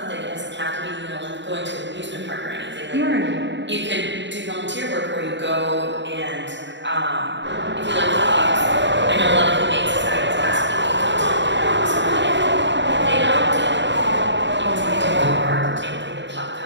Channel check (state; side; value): late; left; 0.52 ms